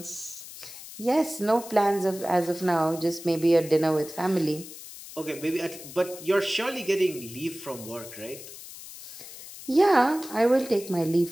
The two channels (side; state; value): left; noise; hiss, 14 dB below the sound